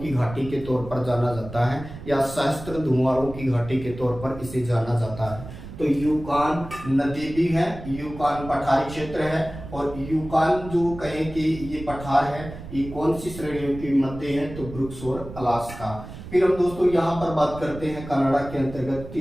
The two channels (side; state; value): right; noise; rumble, 13 dB below the sound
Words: घाटी के तौर पर जाना जाता है या सहस्त्र धुआरों की घाटी के तौर पर इसे जाना जाता है। तो यूकान नदी भी है, यूकान पठारी क्षेत्र है और यूकान जो कहें कि ये पठार है, ये कौन सी श्रेणियों के मध्य है? तो ब्रुक्स और अलास्का। फिर हम दोस्तों यहाँ पर बात करते हैं कनाडा के अंतर्गत